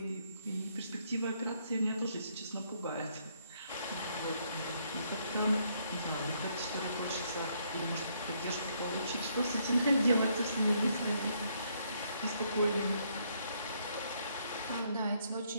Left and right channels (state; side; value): inverted; both; correlation -0.71